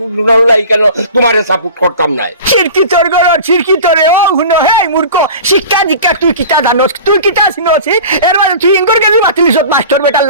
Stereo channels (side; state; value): both; inverted; correlation -0.38